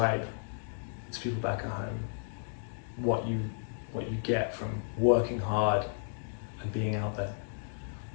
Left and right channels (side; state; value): right; silent; digital silence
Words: to people back at home what you get from working hard and being out there.